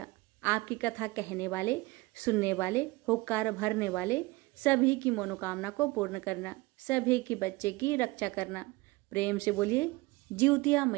आपकी कथा कहने वाले, सुनने वाले, होकार भरने वाले सभी की मनोकामना को पूर्ण करना, सभी की बच्चे की रक्षा करना। प्रेम से बोलिए जितिया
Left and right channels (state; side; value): quieter; left; 21.7 dB